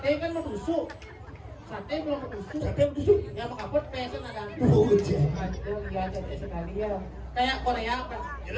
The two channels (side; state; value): both; identical; correlation 1.00